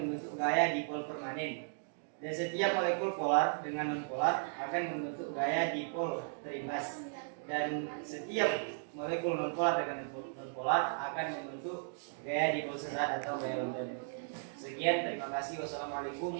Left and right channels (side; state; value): left; silent; digital silence